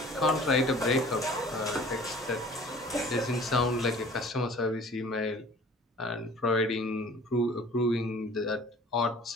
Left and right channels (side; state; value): both; normal; correlation 0.48